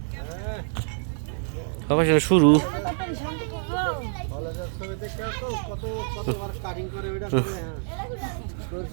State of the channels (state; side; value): silent; left; 56 dB below the other